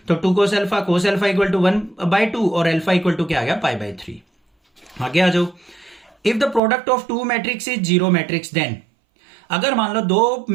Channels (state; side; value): drops out; left; at 6.6 s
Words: तो 2 cos अल्फा इक्वल टू 1/2 और अल्फा इक्वल टू क्या आ गया, π/3। आगे आ जाओ। If the product of two matrix is zero matrix, then अगर मान लो दो